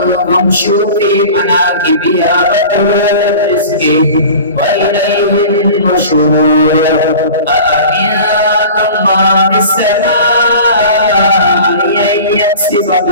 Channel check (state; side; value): inverted; both; correlation -0.39